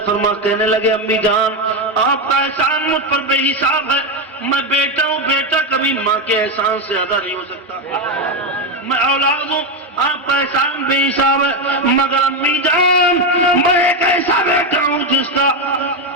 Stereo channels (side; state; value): both; normal; correlation 0.09